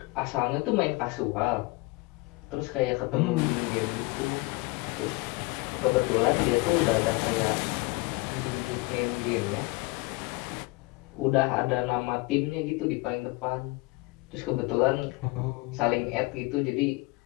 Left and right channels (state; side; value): quieter; right; 24.5 dB